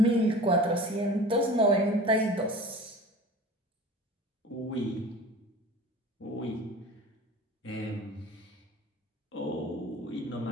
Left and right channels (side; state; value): both; normal; correlation 0.40